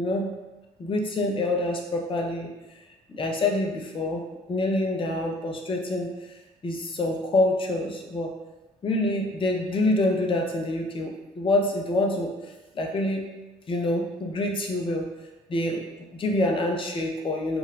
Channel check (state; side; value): normal; both; correlation 0.54